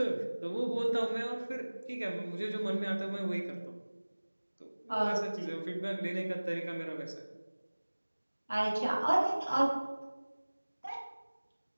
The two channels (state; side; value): inverted; both; correlation -1.00